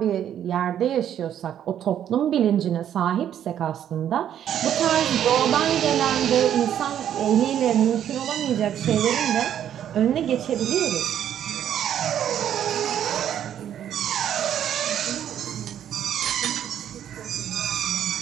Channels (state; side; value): quieter; left; 10.1 dB